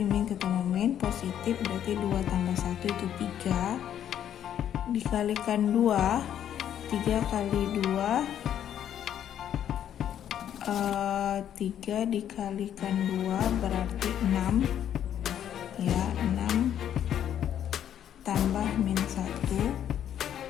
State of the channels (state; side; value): quieter; right; 10.1 dB